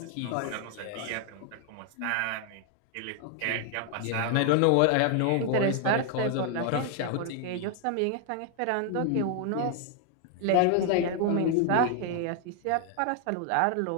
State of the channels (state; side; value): different; both; correlation 0.00